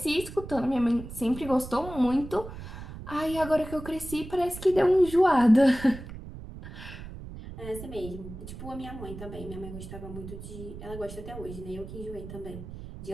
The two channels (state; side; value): noise; right; rumble, 12 dB below the sound